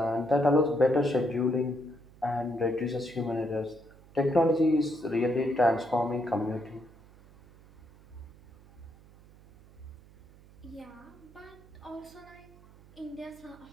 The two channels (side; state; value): right; noise; hum, 24 dB below the sound